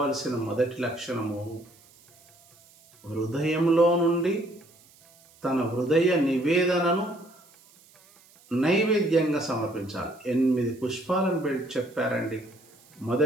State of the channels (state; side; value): noise; right; hiss, 28 dB below the sound